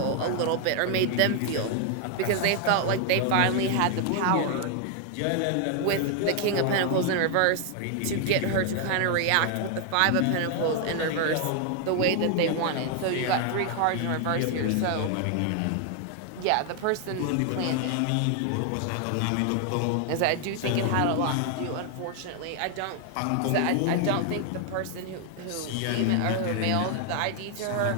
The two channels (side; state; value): both; different; correlation 0.00